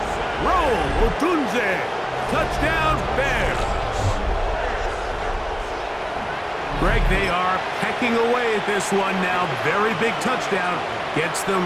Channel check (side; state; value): both; identical; correlation 1.00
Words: Roll, Odunze! Touchdown, Bears! Greg, they are pecking away at this one now. Very big touchdown. Gets them